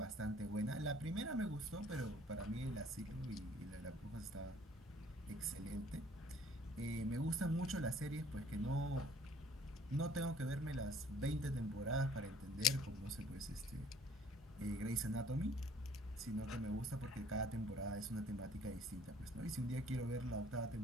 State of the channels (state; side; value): normal; both; correlation 0.57